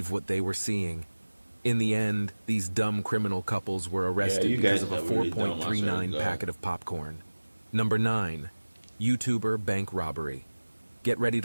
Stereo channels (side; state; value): both; inverted; correlation -1.00